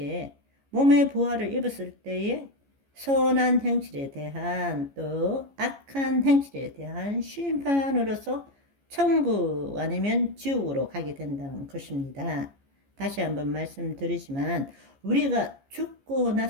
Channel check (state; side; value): late; left; 15 ms